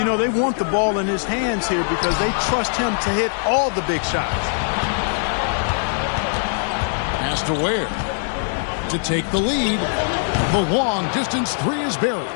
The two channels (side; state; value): right; silent; digital silence